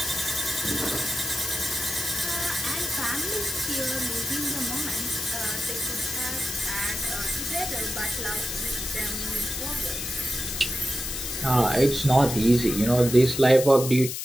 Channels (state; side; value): noise; left; hiss, 5 dB below the sound